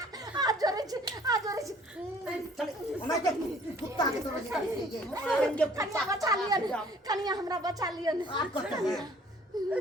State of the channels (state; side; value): normal; both; correlation 0.56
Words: आज जोरे चले मैं के कुत्ता के तरह ये मारेंगे कन्या बचा लिया कन्या हमरा बचा लिया आपको क्या है